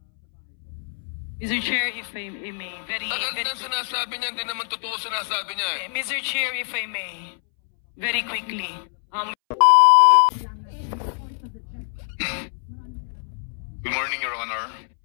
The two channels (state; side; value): silent; right; 62 dB below the other